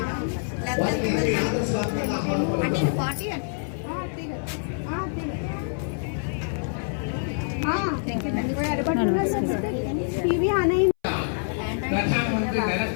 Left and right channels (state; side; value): silent; right; 61 dB below the other